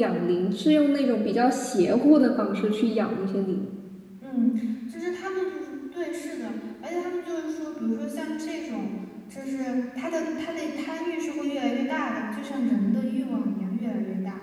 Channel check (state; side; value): identical; both; correlation 1.00